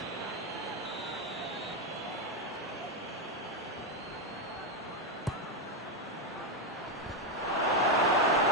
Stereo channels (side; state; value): both; normal; correlation 0.05